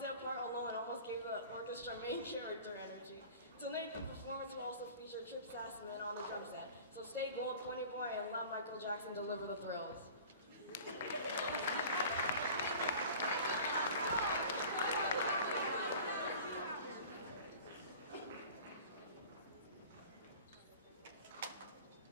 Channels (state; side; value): inverted; both; correlation -0.42